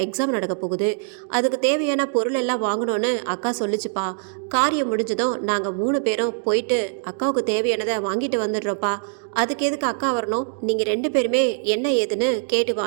எக்ஸாம் நடக்க போகுது. அதுக்கு தேவையான பொருள் எல்லாம் வாங்கணும்னு அக்கா சொல்லிச்சுப்பா. காரியம் முடிஞ்சதும் நாங்கள் 3 பேரும் போயிட்டு அக்காவுக்கு தேவையானதை வாங்கிட்டு வந்துடுறோப்பா. அதுக்கு எதுக்கு அக்கா வரணும்? நீங்கள் 2 பேருமே என்ன ஏதுன்னு கேட்டு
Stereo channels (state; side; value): silent; left; digital silence